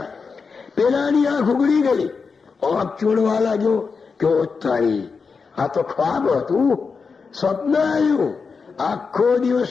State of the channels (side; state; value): right; quieter; 5.1 dB